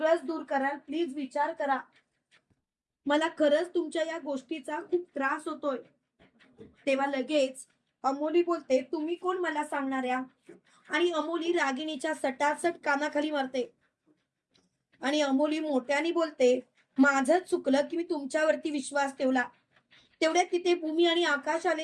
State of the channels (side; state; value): both; identical; correlation 1.00